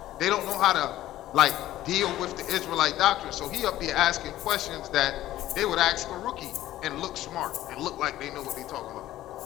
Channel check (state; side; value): quieter; right; 14.3 dB